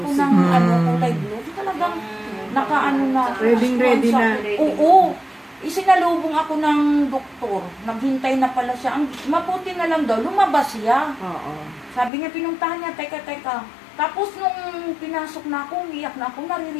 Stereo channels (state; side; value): drops out; right; at 12.1 s